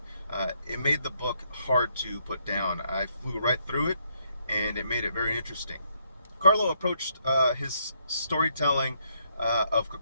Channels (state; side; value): inverted; both; correlation -0.74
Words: It made the book hard to put down. I flew right through it, and it made it very interesting. Carlo approached his storytelling of